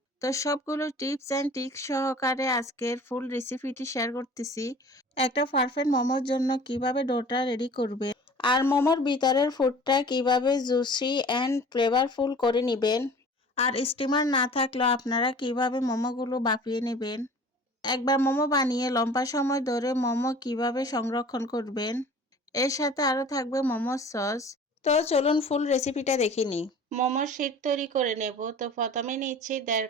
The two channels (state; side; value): normal; both; correlation 0.44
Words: তো সবগুলো টিপস অ্যান্ড ট্রিক্স সহকারে আজকের ফুল রেসিপিটি শেয়ার করতেছি। একটা পারফেক্ট মোমোর জন্য কিভাবে ডোটা রেডি করবে আর মোমোর ভিতরের ফুডটা কিভাবে জুসি অ্যান্ড ফ্লেভারফুল করে নেবেন, আর স্টিমার না থাকলেও আপনারা কিভাবে মোমোগুলো বাপিয়ে নেবেন, একবার মোমো বানিয়ে লম্বা সময় ধরে মোমো কিভাবে সংরক্ষণ করবেন, এর সাথে আরও থাকবে মোমোর সস। তো চলুন ফুল রেসিপিটা দেখে নিই। মোমোর শিট তৈরি করে নেব। তো প্রথমে নিচ্ছি 1.5